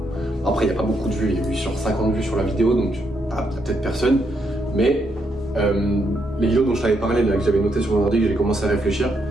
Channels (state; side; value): normal; both; correlation 0.78